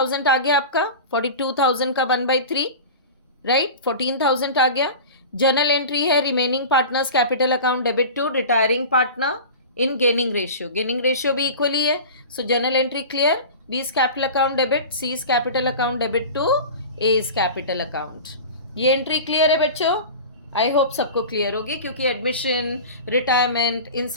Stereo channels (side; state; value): both; inverted; correlation -0.33